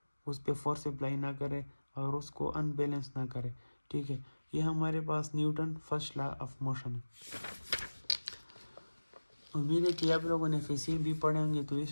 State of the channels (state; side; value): inverted; both; correlation -1.00